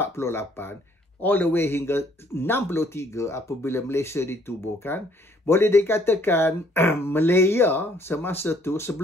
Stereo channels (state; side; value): normal; both; correlation 0.63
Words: all the way hingga 63 apabila Malaysia ditubuhkan, boleh dikatakan Malaya semasa tu